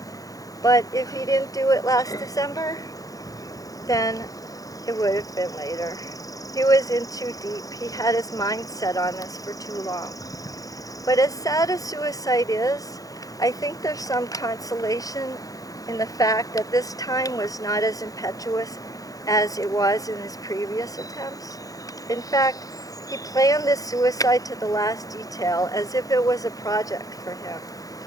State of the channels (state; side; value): late; right; 0.17 ms